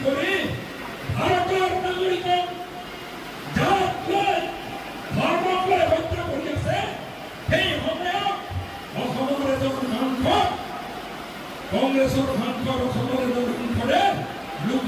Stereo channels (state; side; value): identical; both; correlation 1.00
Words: কৰি ভাৰতৰ নাগৰিকক জাত লৈ ধৰ্মক লৈ হত্যা কৰি আছে, সেই সময়ত অসমৰ এজন সাংসদ, কংগ্ৰেছৰ সাংসদ অসমৰ এজন সাংসদে